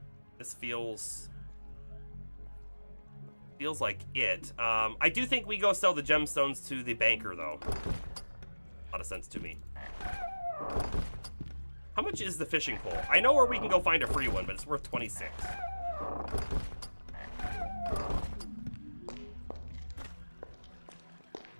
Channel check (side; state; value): both; inverted; correlation -1.00